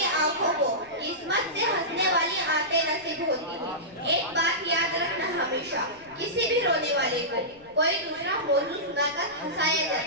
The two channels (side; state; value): left; noise; rumble, 28 dB below the sound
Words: आंखों को किस्मत से हंसने वाली आंखें नसीब होती हैं। एक बात याद रखना, हमेशा किसी भी रोने वाले को कोई दूसरा मौजू सुनाकर हंसाया